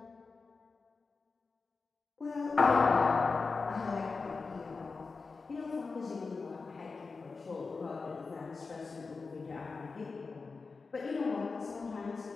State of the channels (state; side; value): quieter; right; 4.3 dB